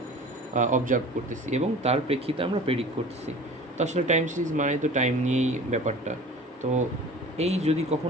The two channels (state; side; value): normal; both; correlation 0.41